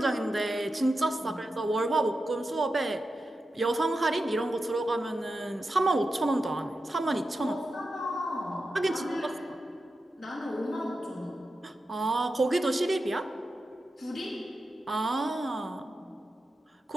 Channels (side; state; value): both; normal; correlation 0.90